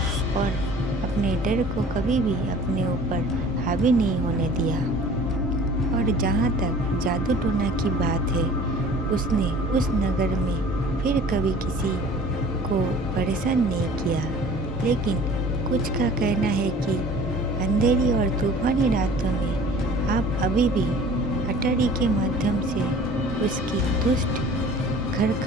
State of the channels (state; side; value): normal; both; correlation 0.47